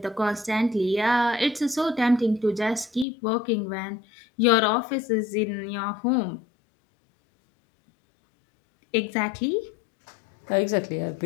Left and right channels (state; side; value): drops out; right; at 3.1 s